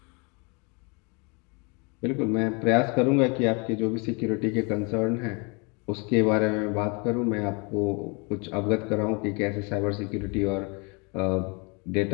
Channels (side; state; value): right; quieter; 31.4 dB